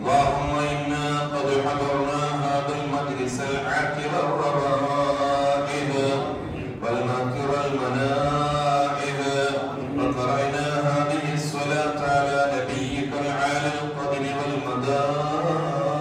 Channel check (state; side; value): identical; both; correlation 1.00